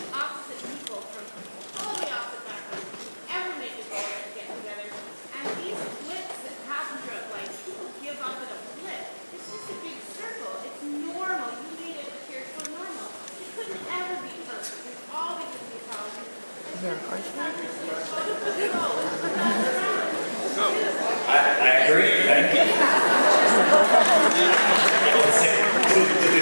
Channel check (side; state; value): both; inverted; correlation -1.00